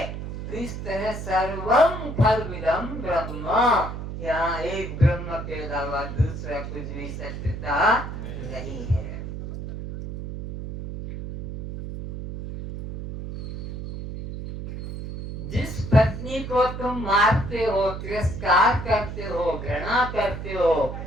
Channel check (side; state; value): right; noise; hum, 7 dB below the sound